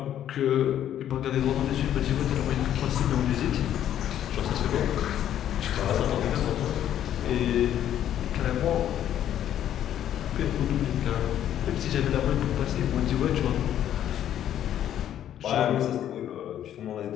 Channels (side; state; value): right; quieter; 10.9 dB